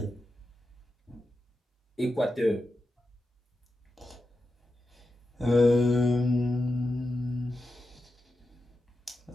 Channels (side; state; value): both; normal; correlation 0.90